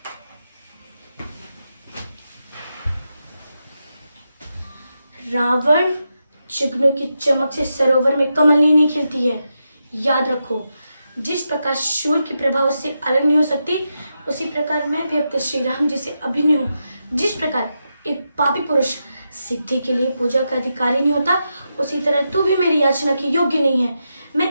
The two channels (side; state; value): both; inverted; correlation -0.86